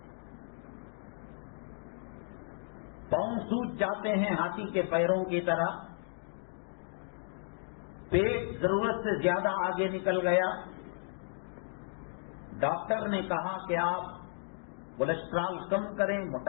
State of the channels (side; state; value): right; silent; digital silence